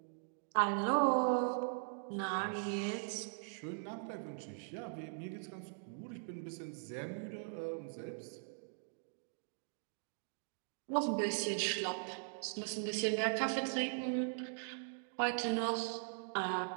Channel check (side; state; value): left; silent; digital silence